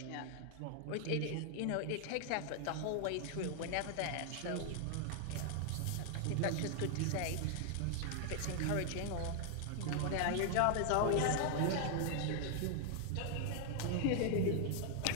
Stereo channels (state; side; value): different; both; correlation 0.00